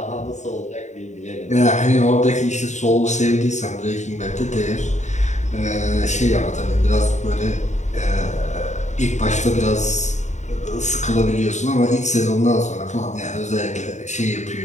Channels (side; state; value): right; late; 0.34 ms